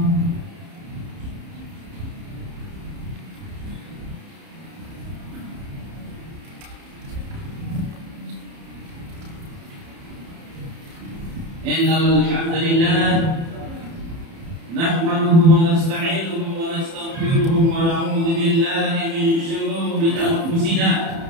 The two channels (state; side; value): late; left; 30 ms